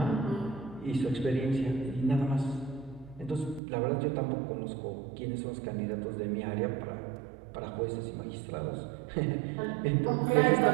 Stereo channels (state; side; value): drops out; left; at 3.6 s